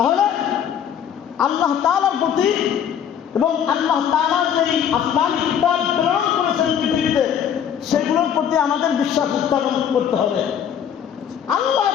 আল্লাহ তাআলার প্রতি এবং আল্লাহ তাআলা যে আসমানী কিতাব প্রেরণ করেছেন পৃথিবীতে, সেগুলোর প্রতি আমাদের বিশ্বাস স্থাপন করতে হবে। আল্লাহ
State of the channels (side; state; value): right; quieter; 8.8 dB